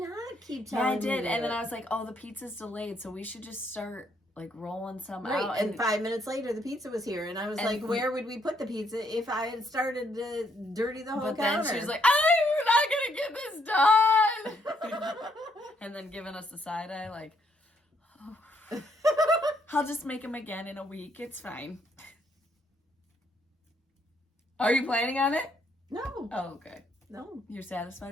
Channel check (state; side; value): normal; both; correlation 0.72